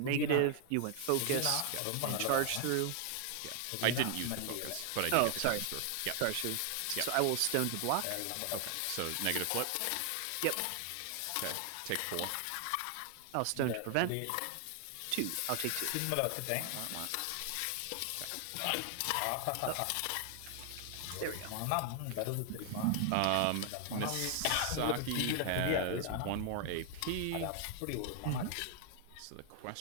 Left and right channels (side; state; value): both; different; correlation 0.00